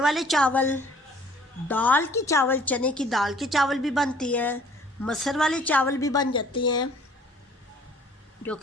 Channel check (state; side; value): normal; both; correlation 0.55